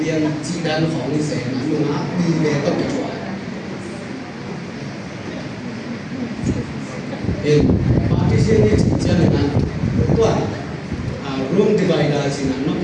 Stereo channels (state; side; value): identical; both; correlation 1.00